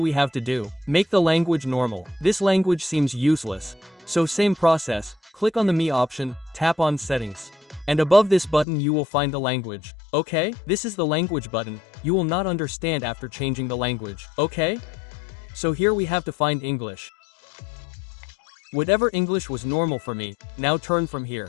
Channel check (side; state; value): right; drops out; at 8.7 s